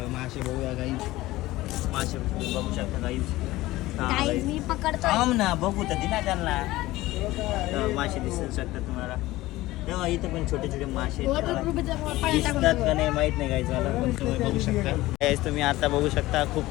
मासे बघूया गाईज. मासे बघू शकता गाईज. गाईज मी पकडतो. थांब ना बघू तर दिना त्यांना. मासे दिसू शकतात तुम्हाला. तेव्हा इथं पण छोटे छोटे मासे आहेत. वॉटरप्रूफचा पाण्यात दिसतात टाकून का नाही माहीत नाही गाईज मला, पण तुम्ही बघू शकता. Guys, तुम्ही आता बघू शकता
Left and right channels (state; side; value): quieter; right; 17.8 dB